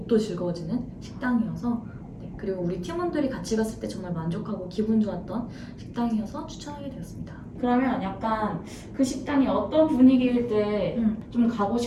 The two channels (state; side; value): identical; both; correlation 1.00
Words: 즐거워지는 식당이어서 그리고 우리 팀원들이 같이 갔을 때 정말 만족하고 기분 좋았던 식당이어서 추천하게 되었습니다. 그러면 약간 그 식당이 어떤 분위기일 때 좀 가고